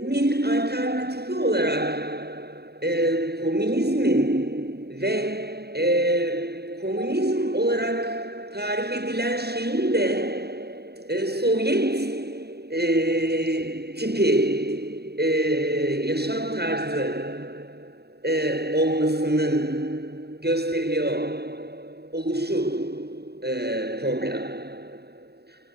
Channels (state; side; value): late; left; 0.47 ms